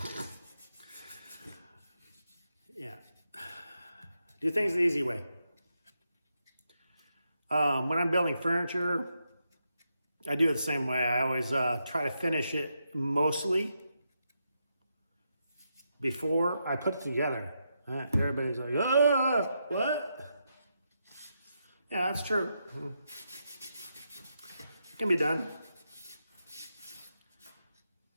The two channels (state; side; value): inverted; both; correlation -0.83